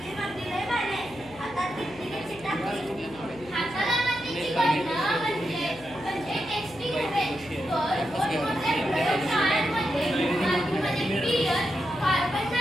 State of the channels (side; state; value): left; noise; hum, 21 dB below the sound